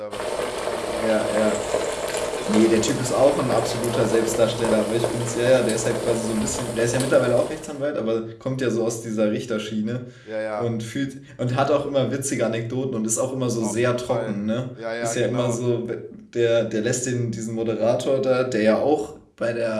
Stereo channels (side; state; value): both; identical; correlation 1.00